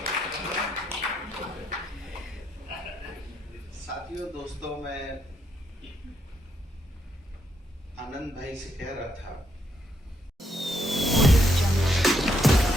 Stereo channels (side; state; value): both; normal; correlation 0.77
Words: साथियों, दोस्तों, मैं आनंद भाई से कह रहा था